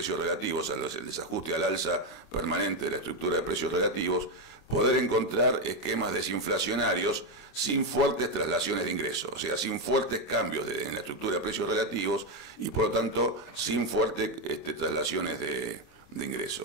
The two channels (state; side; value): late; right; 25 ms